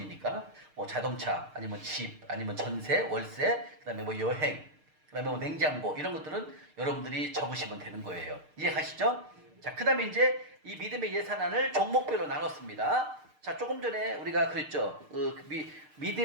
뭐 자동차, 아니면 집, 아니면 전세, 월세, 그 다음에 뭐 여행, 그 다음에 뭐 냉장고, 이런 것들은 여러분들이 적으시면 되는 거예요. 이해 가시죠? 자, 그 다음에 이제 이 믿음의 예산안을 종목별로 나눴습니다. 자, 조금 전에 우리가 그랬죠.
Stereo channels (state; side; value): late; left; 6.6 ms